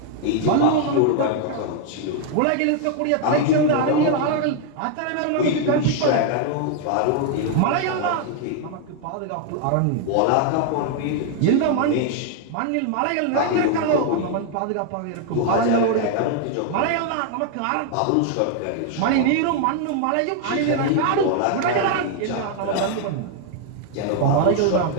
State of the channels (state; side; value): different; both; correlation 0.00